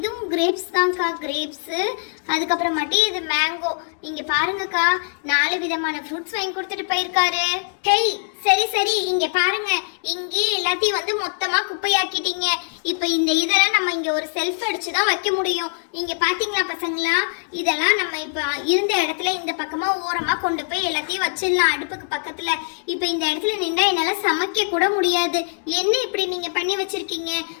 கிரேப்ஸ் தான்க்கா, கிரேப்ஸு. அதுக்கப்புறமாட்டி இது மேங்கோ. இங்க பாருங்கக்கா, 4 விதமான ஃப்ரூட்ஸ் வாங்கி கொடுத்துட்டு போயிருக்காரு. ஹேய் சரி சரி, இங்க பாருங்க, இங்கே எல்லாத்தையும் வந்து மொத்தமா குப்பையாக்கிட்டீங்க. இப்ப இந்த இதெல்லாம் நம்ம இங்க ஒரு செல்ஃப் அடிச்சு தான் வைக்க முடியும். இங்க பாத்தீங்களா பசங்களா, இதெல்லாம் நம்ம இப்ப இருந்த இடத்துல இந்த பக்கமா ஓரமா கொண்டு போய் எல்லாத்தையும் வச்சிடலாம் அடுப்புக்கு பக்கத்துல. இப்ப இந்த இடத்துல நின்றா என்னால சமைக்க கூட முடியாது. என்ன இப்படி நீங்க பண்ணி வச்சிருக்கீங்க?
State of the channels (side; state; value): right; silent; digital silence